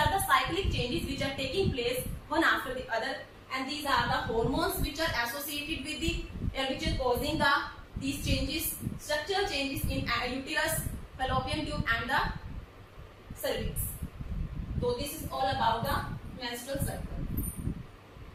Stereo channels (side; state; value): both; identical; correlation 1.00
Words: the cyclic changes which are taking place one after the other, and these are the hormones which are associated with the which are causing these changes, structural changes in uterus, fallopian tube and the cervix. So this is all about the menstrual cycle.